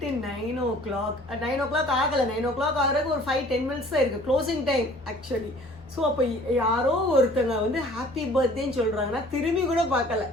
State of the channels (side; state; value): both; normal; correlation 0.51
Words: 9 o'clock ஆகலை, 9 o'clock ஆகிறதுக்கு ஒரு 5-10 minutes தான் இருக்குது க்ளோசிங் டைம் ஆக்சுவலி. ஸோ அப்போ யாரோ ஒருத்தங்க வந்து ஹாப்பி பர்த்டேன்னு சொல்கிறாங்கன்னா திரும்பி கூட பார்க்கல